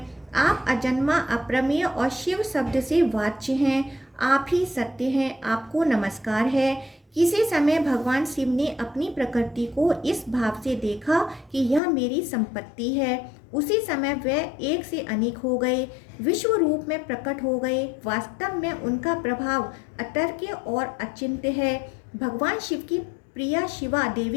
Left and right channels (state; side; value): drops out; right; at 11.8 s